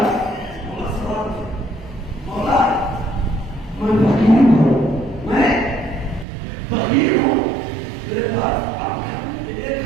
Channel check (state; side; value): drops out; left; at 6.2 s